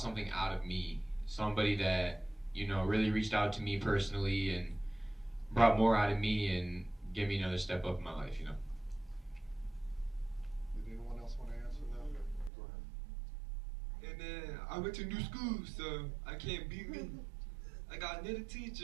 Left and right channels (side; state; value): left; drops out; at 12.5 s